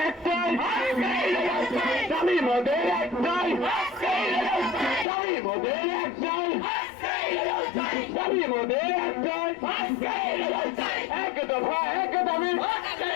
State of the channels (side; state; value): right; drops out; at 5.1 s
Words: একটাই, দাবি মোদের একটাই, দাবি মোদের একটাই, দাবি মোদের একটাই, এক দফা এক দাবি,